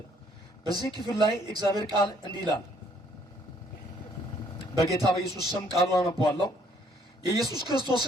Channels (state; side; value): normal; both; correlation 0.64